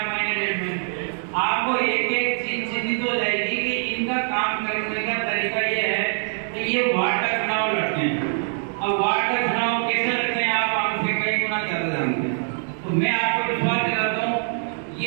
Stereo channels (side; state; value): left; silent; digital silence